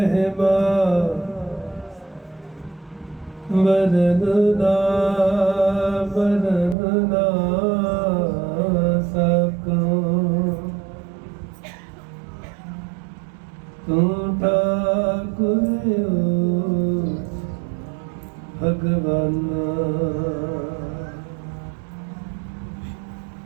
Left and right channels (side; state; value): left; drops out; at 6.8 s